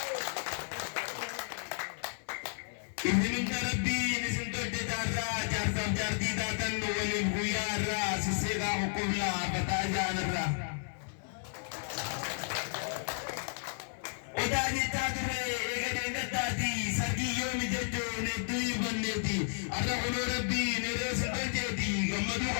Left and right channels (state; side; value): silent; right; digital silence